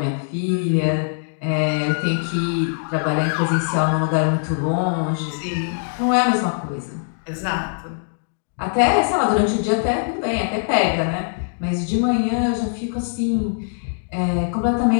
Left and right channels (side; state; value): right; silent; digital silence